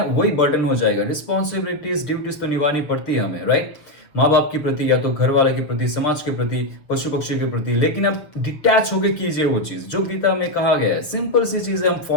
वही बर्डन हो जाएगा। रिस्पॉन्सिबिलिटीज, ड्यूटीज तो निभानी पड़ती है हमें, राइट? माँ बाप के प्रति, या तो घर वाले के प्रति, समाज के प्रति, पशु पक्षी के प्रति। लेकिन अब डिटैच होके कीजिए वो चीज जो गीता में कहा गया है। सिंपल सी चीजें हम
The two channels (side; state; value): right; late; 6.5 ms